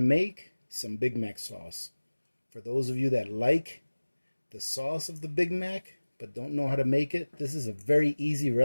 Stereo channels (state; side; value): inverted; both; correlation -1.00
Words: some Big Mac sauce. For those of you that like the sauce of the Big Mac but don't know how to make it, this is a very easy